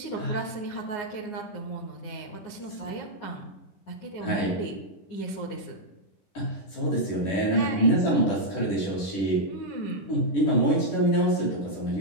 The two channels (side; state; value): right; late; 10 ms